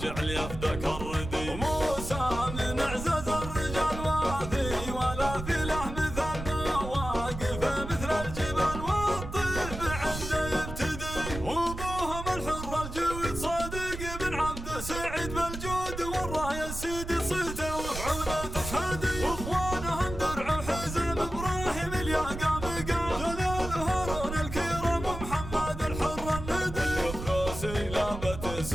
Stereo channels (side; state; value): right; noise; rumble, 8 dB below the sound